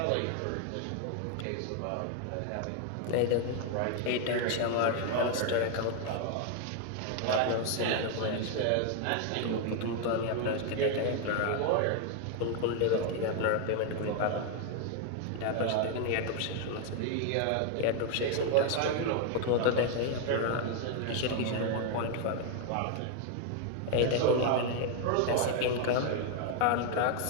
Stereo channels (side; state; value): both; different; correlation 0.01